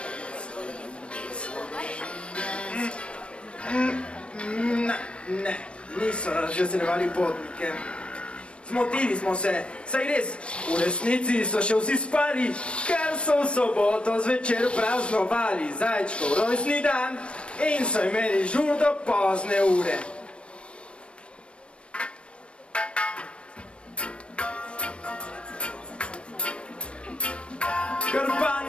Ne, niso razveseljevali potnike. Zmotili smo se, saj res, v resnici so še vsi spali, ker so v soboto zvečer praznovali zajčkov rojstni dan in so imeli žur do pozne ure.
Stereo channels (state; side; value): late; right; 0.059 ms